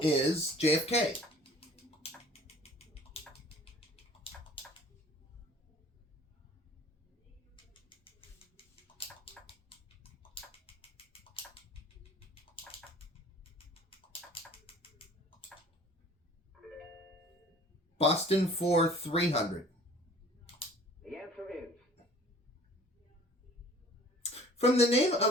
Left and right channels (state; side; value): normal; both; correlation 0.49